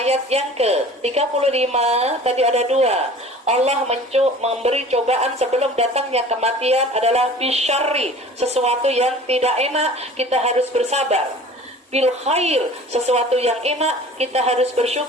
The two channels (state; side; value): normal; both; correlation 0.44